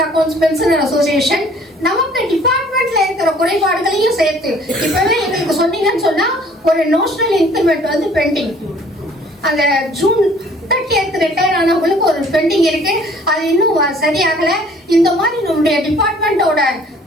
accounts pensioner association நமக்கு டிபார்ட்மெண்ட்ல இருக்கிற குறைபாடுகளையும் சேர்த்து இப்பவே எங்களுக்கு சொன்னீங்கன்னு சொன்னா ஒரு நோஷனல் இன்கிரிமெண்ட் வந்து பெண்டிங். அந்த ஜூன் 30th ரிட்டையர் ஆனவங்களுக்கு ஒரு பெண்டிங் இருக்கு. அது இன்னும் சரியாகல. இந்த மாதிரி நம்முடைய டிபார்ட்மெண்டோட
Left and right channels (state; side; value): normal; both; correlation 0.55